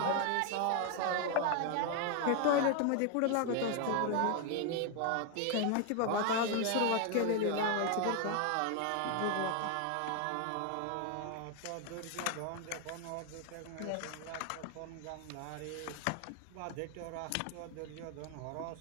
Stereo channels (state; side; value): different; both; correlation 0.01